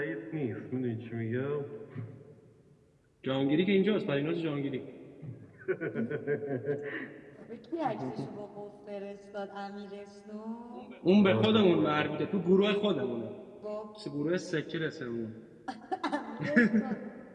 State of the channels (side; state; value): both; identical; correlation 1.00